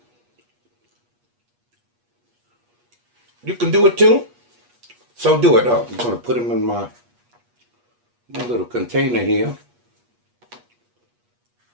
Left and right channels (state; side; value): late; left; 8.3 ms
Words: You can do it too. So do it. Oh, I'm going to put them in my little container here.